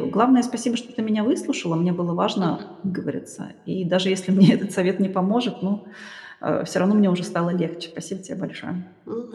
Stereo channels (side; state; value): both; identical; correlation 1.00